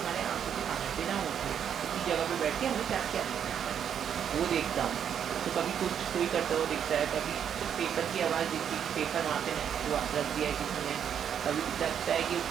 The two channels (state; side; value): quieter; left; 8.6 dB